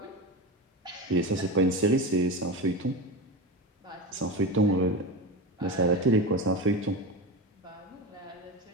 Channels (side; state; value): both; normal; correlation 0.23